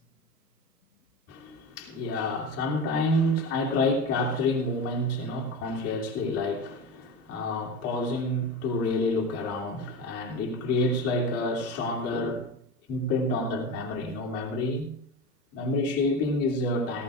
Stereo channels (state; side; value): normal; both; correlation 0.25